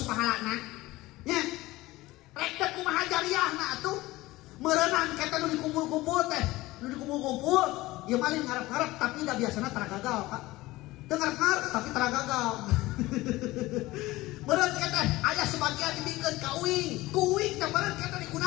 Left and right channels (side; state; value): right; quieter; 18.9 dB